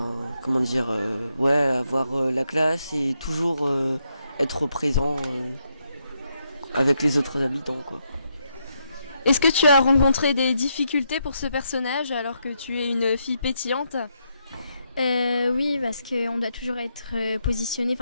la classe et toujours être présent avec les autres habitants, quoi. Est-ce que tu as rencontré des difficultés pour ce personnage alors que tu es une fille pétillante ? Oui, parce qu'on doit toujours être positionné,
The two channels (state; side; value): inverted; both; correlation -0.79